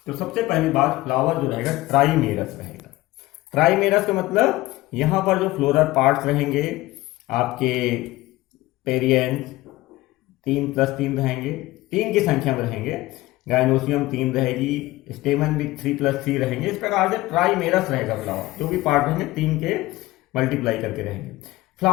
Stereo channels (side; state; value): right; quieter; 18.4 dB